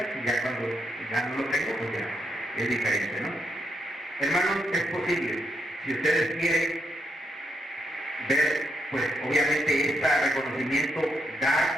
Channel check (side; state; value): both; normal; correlation 0.80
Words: ya cuando ya no lo tengo, pues ya es diferente, ¿no? Hermanos, es posible, si ustedes quieren ver, pues obviamente este reconocimiento,